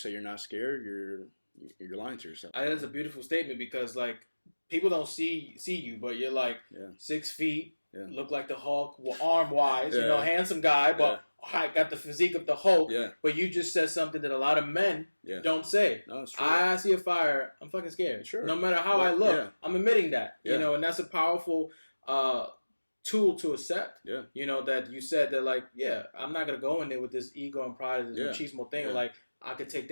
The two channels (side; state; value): both; inverted; correlation -1.00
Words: you're not scared, you're lying to yourself. That's a beautiful statement because like people don't see you, but you're like 6 feet, look like the Hulk, arm wise, handsome guy, but I got the physique of the Hulk. Yeah. But you just said something that a lot of men don't say. No, it's true. I see a fire, I'm fucking scared. Sure. No matter how I look, I'm admitting that. And that's a powerful tool to accept. Yeah. That you said that like, I'm not gonna go in there with this ego and pride, this machismo thing. Yeah. Like I could take